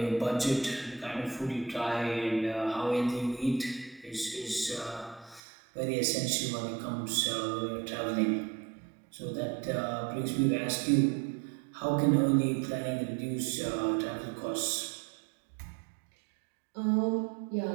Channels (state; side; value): drops out; left; at 5.4 s